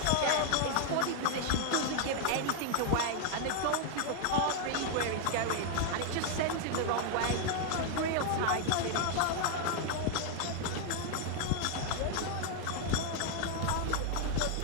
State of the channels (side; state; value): both; different; correlation 0.00